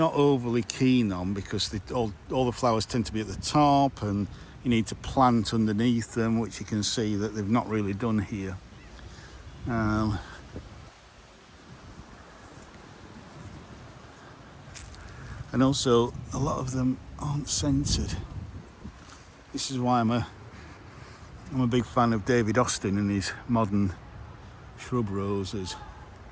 overly keen on, because all the flowers tend to be at the top and you need to plant underneath them, which you can see that they've not really done here. And also a lot of them aren't scented. This is why I'm a big fan of David Austin and his modern shrub roses,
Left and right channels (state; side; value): identical; both; correlation 1.00